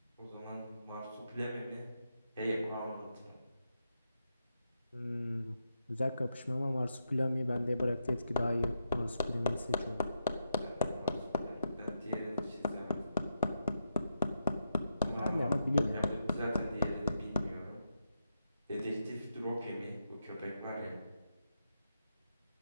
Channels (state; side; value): inverted; both; correlation -0.84